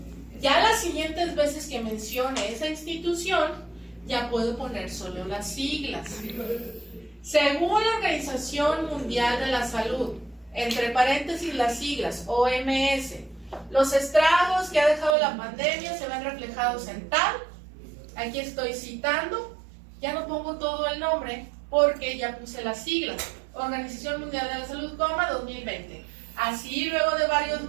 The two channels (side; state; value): left; drops out; at 15.2 s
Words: Ya las siguientes veces que mencione esa institución, ya puedo poner solo las siglas. Según la Organización Mundial de la Salud, entre paréntesis las siglas, OMS, los estragos que ha dejado la pandemia se ven reflejados en tal. Aquí estoy citando, ya no pongo todo el nombre porque ya puse las siglas. Organización Mundial de la Salud, 2020. Así, luego de varios